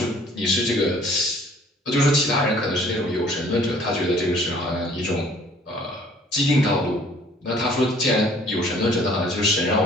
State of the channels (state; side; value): normal; both; correlation 0.56